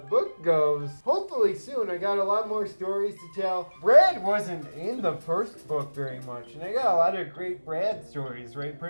book goes, hopefully soon. I got a lot more stories to tell. Brad wasn't in the first book very much, and I got a lot of great Brad stories, right,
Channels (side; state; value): both; inverted; correlation -1.00